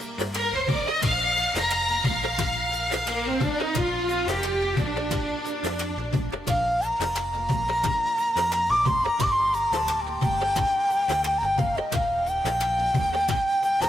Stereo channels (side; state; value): both; normal; correlation 0.84